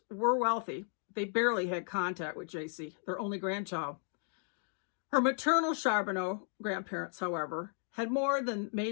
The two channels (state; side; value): silent; right; 55 dB below the other